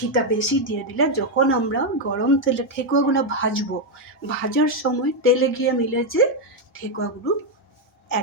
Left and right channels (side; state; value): both; normal; correlation 0.03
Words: বেশি দিয়ে দিলে যখন আমরা গরম তেলে ঠেকুয়াগুলো ভাজবো, ভাজার সময় তেলে গিয়ে মিলে যে ঠেকুয়াগুলো